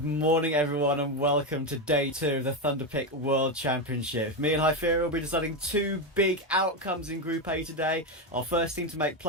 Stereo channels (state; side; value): normal; both; correlation 0.10